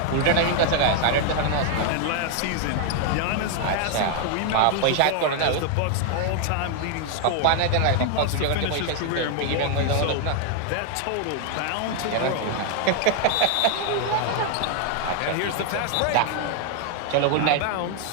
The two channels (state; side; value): different; both; correlation 0.00